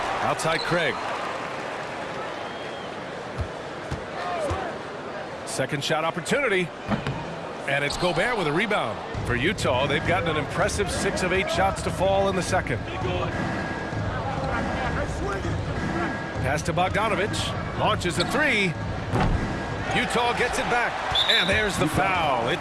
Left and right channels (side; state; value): both; identical; correlation 1.00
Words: Outside Craig. Second shot opportunity. And it's Gobert with a rebound. For Utah, they've gotten an impressive 6 of 8 shots to fall in the second. Pass to Bogdanovich. Launches a 3. Utah gets it back. And there's the foul.